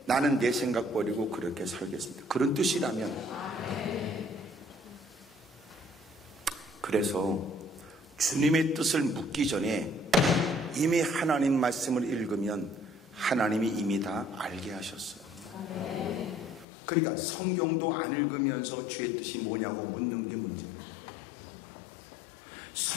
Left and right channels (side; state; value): right; drops out; at 16.7 s